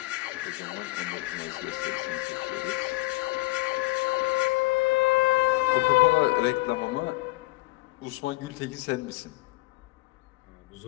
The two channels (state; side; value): quieter; right; 21.0 dB